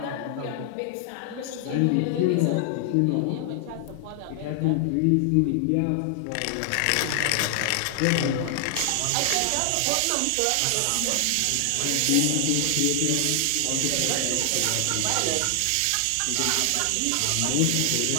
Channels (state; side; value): different; both; correlation 0.00